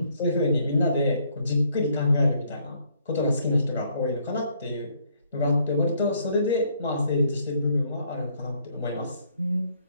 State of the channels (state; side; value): inverted; both; correlation -0.67